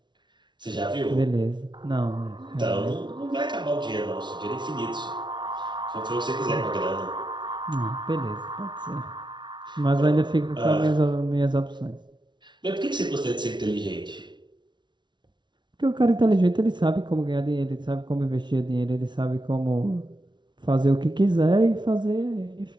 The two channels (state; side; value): late; left; 0.22 ms